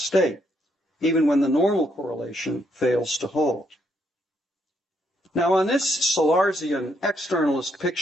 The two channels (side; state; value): both; normal; correlation 0.74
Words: even when the normal correlation fails to hold. Now, on this Sellarsian externalist